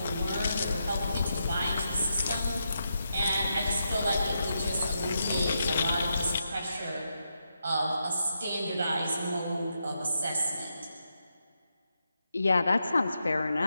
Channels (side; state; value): both; inverted; correlation -0.83